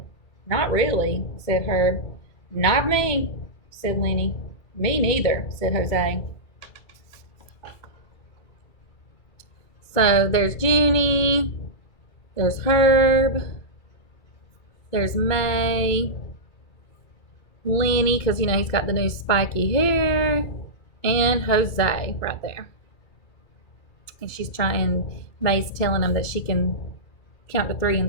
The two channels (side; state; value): right; late; 2.2 ms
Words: Not really, said Herb. Not me, said Lenny. Me neither, said Jose. So there's Junie, there's Herb, there's May, Lenny, because, he's got the new spiky hair, and Jose right there. And May's telling him that she can count to 3